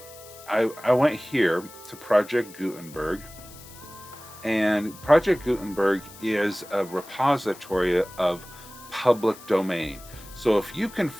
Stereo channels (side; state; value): left; noise; hiss, 19 dB below the sound